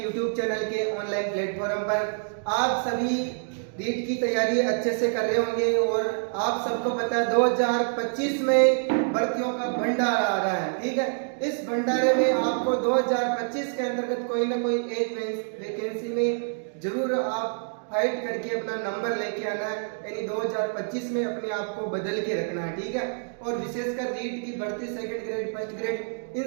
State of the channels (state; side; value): silent; left; digital silence